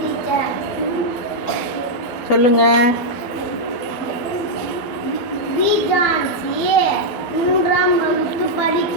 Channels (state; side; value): late; right; 12 ms